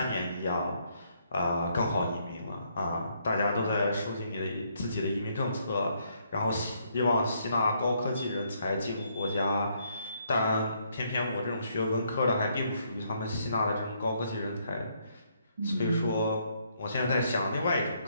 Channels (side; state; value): both; inverted; correlation -0.72